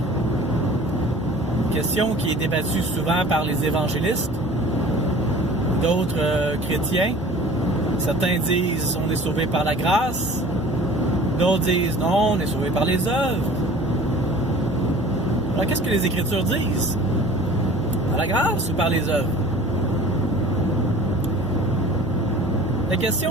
Question qui est débattue souvent par les évangélistes, d'autres chrétiens. Certains disent on est sauvé par la grâce, d'autres disent non, on est sauvé par les œuvres. Alors qu'est-ce que les Écritures disent? Par la grâce ou par les œuvres? La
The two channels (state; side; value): normal; both; correlation 0.45